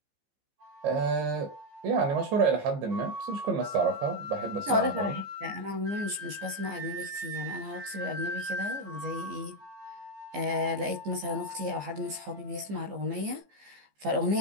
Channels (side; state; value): left; late; 15 ms